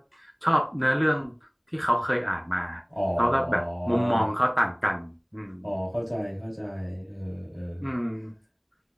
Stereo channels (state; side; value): identical; both; correlation 1.00